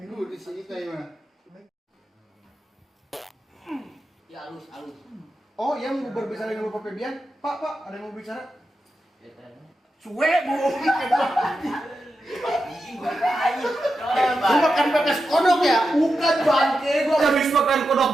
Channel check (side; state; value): both; normal; correlation 0.89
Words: di sini kayak mana? Ya halus. Oh, yang mau berbicara dengan Bapak Febian? Pak, ada yang mau bicara? Suwe bu. Lu makan pepes kodok ya? Bukan bangke, gua habis makan kodok